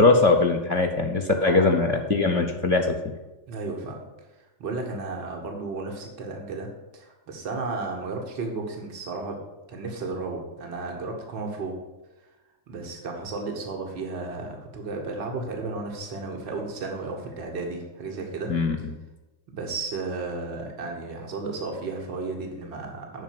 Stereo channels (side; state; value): left; late; 4.0 ms